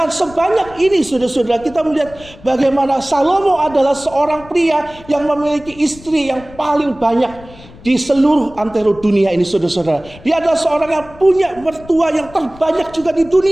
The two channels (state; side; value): noise; left; rumble, 21 dB below the sound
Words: sebanyak ini saudara-saudara, kita melihat bagaimana Salomo adalah seorang pria yang memiliki istri yang paling banyak di seluruh antero dunia ini, saudara-saudara. Dia adalah seorang yang punya mertua yang terbanyak juga di